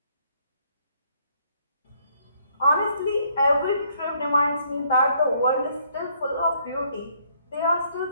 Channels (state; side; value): inverted; both; correlation -0.68